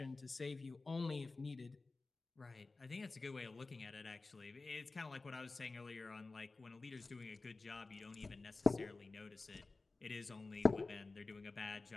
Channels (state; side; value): quieter; right; 3.6 dB